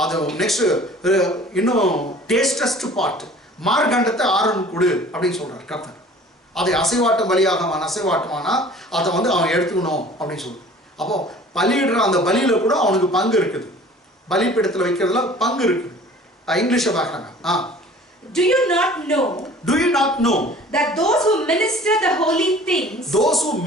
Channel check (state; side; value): normal; both; correlation 0.48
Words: அது நெக்ஸ்ட் இன்னும் டேஸ்டஸ்ட் பார்ட் மார்கண்டத்தை ஆரோன் கொடு அப்படின்னு சொல்றார் கர்த்தர். அதை அசைவாட்டம் அசைவாட்டமானா அதை அவன் எடுத்துக்கணும் அப்படின்னு சொல்றார். அப்போ பலியிடுற அந்த பலியில கூட அவனுக்கு பங்கு இருக்குது, பலிபீடத்துல வைக்கிறதுல பங்கு இருக்குது. இங்கிலீஷ்ல பார்க்கறாங்க. Do you not know that those who minister the holy things,